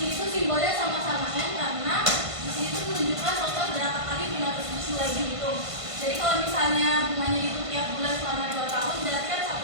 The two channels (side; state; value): left; late; 1.5 ms